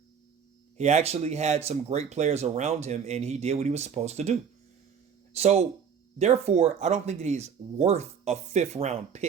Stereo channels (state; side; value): quieter; left; 7.2 dB